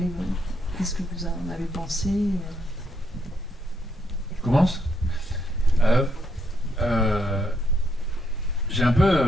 que vous en avez pensé? Je commence. J'ai un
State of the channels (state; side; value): normal; both; correlation 0.76